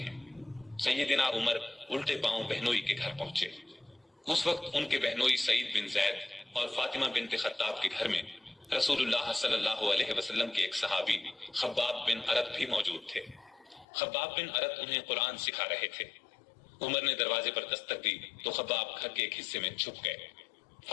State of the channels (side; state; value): right; drops out; at 13.9 s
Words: ہیں۔ سیدنا عمر الٹے پاؤں بہنوئی کے گھر پہنچے۔ اس وقت ان کے بہنوئی سعید بن زید اور فاطمہ بنت خطاب کے گھر میں رسول اللہ صلی اللہ علیہ وسلم کے ایک صحابی خباب بن ارت بھی موجود تھے۔ خباب بن ارت انہیں قرآن سکھا رہے تھے۔ عمر نے دروازے پر دستک دی تو خباب گھر کے ایک حصے میں چھپ گئے۔